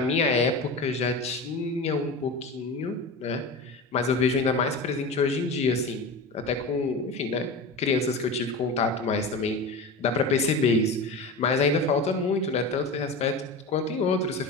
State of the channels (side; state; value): right; quieter; 3.0 dB